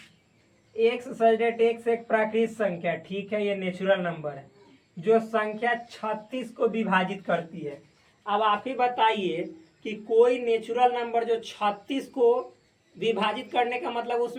x एक प्राकृत संख्या, ठीक है, ये नेचुरल नंबर है जो संख्या 36 को विभाजित करती है। अब आप ही बताइए कि कोई नेचुरल नंबर जो 36 को विभाजित करने का मतलब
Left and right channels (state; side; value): identical; both; correlation 1.00